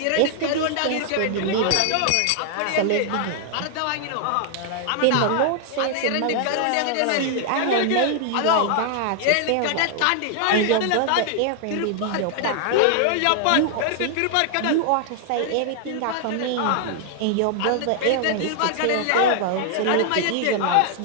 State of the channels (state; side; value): different; both; correlation 0.00